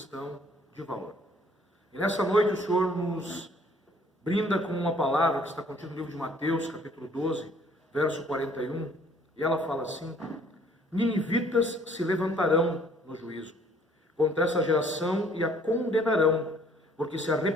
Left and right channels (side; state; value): both; normal; correlation 0.59